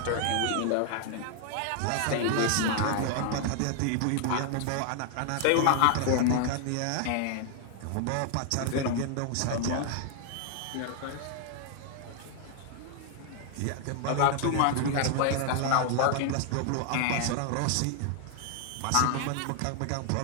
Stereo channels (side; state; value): both; different; correlation 0.00